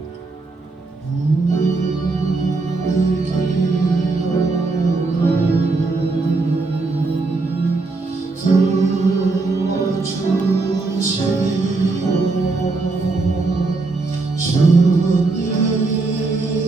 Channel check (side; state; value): left; quieter; 3.6 dB